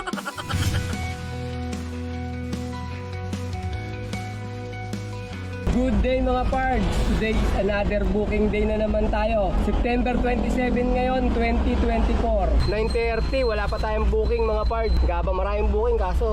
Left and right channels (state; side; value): identical; both; correlation 1.00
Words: Good day mga pards! Today is another booking day na naman tayo. September 27 ngayon, 2024. 9:30, wala pa tayong booking mga pards. Gabang maraming booking